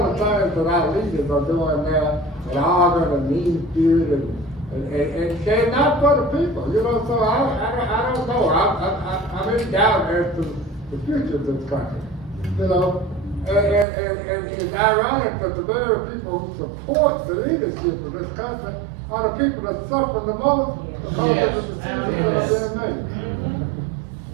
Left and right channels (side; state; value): left; drops out; at 13.9 s